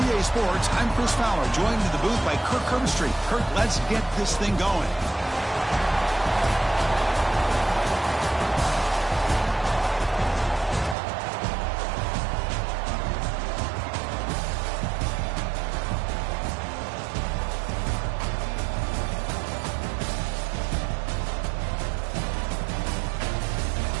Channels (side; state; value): left; drops out; at 11.0 s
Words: Sports, I'm Chris Fowler, joined in the booth by Kirk Herbstreit. Kirk, let's get this thing going.